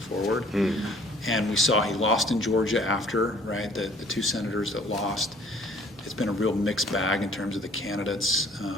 And we saw he lost in Georgia after, right, the two senators that lost. It's been a real mixed bag in terms of the candidates.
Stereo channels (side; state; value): both; normal; correlation 0.55